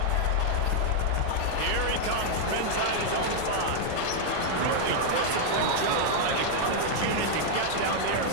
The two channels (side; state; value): both; different; correlation 0.00